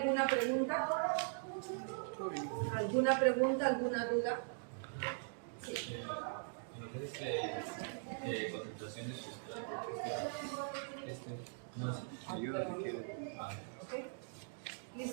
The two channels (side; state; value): left; silent; digital silence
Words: pregunta? ¿Alguna pregunta, alguna duda? Sí. En lo que es concentración de sustrato, no Ayuda si quieres. ¿Ok?